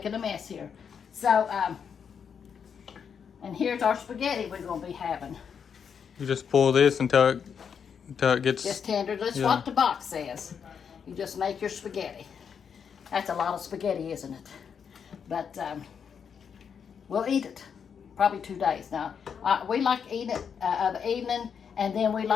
a mess here. So, and here's our spaghetti we're going to be having. You just pull this until it gets... Just tender. That's what the box says. You just make your spaghetti. That's a lot of spaghetti, isn't it? But we'll eat it. Probably 2 days now. We like eating it of the evening, and then we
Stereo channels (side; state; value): right; quieter; 7.0 dB